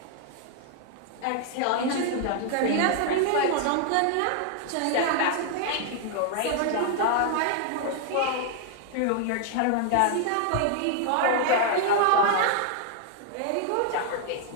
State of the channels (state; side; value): different; both; correlation 0.00